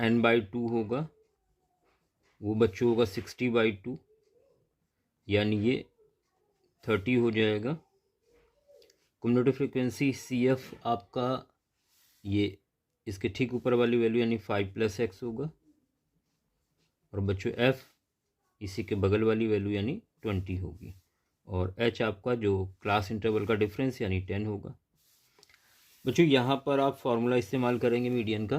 होगा वो बच्चों होगा 60/2, यानी ये 30 हो जाएगा। कम्युनिटी फ्रिक्वेंसी CF आपका ये इसके ठीक ऊपर वाली वैल्यू यानी 5 + x होगा और बच्चों F इसी के बगल वाली वैल्यू यानी 20 होगी और H आपका जो क्लास इंटरवल का डिफरेंस यानी 10 होगा। बच्चों यहाँ पर आप फॉर्मूला इस्तेमाल करेंगे मीडियन का,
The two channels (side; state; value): both; identical; correlation 1.00